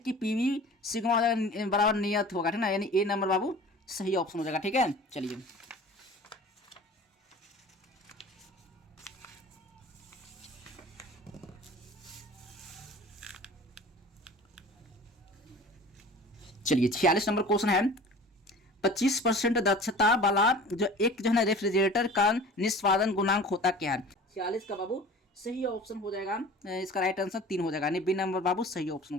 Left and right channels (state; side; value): normal; both; correlation 0.42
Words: पीवी सिग्मा बराबर नियत होगा, ठीक ना, यानी ए नंबर बाबू सही ऑप्शन हो जाएगा, ठीक है। चलिए चलिए 46 नंबर क्वेश्चन है, 25% दक्षता वाला जो एक जो है ना रेफ्रिजरेटर का निष्पादन गुणांक होता क्या है। 46 का बाबू सही ऑप्शन हो जाएगा, इसका राइट आंसर 3 हो जाएगा, बी नंबर बाबू सही ऑप्शन